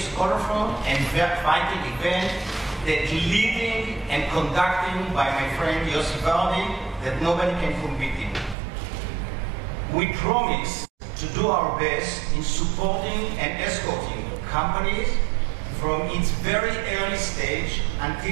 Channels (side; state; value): left; drops out; at 8.6 s